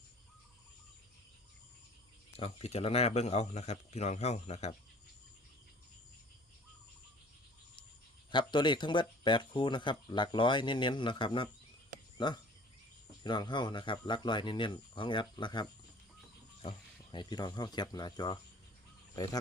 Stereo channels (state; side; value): normal; both; correlation 0.49